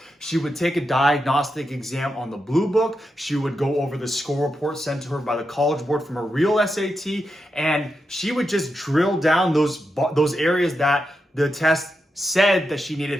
She would take a diagnostic exam on the blue book. She would go over the score report sent to her by the College Board from a real SAT. And she would just drill down those areas that the test said that she needed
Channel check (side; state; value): both; normal; correlation 0.87